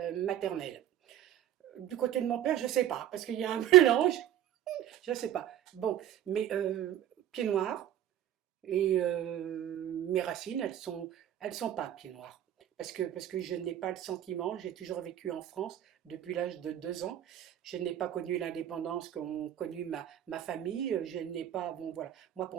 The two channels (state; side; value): quieter; left; 11.6 dB